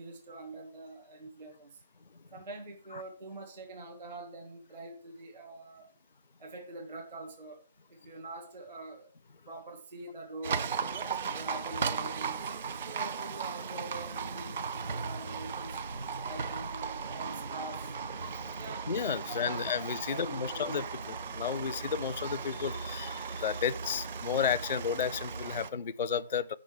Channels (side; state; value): both; inverted; correlation -0.38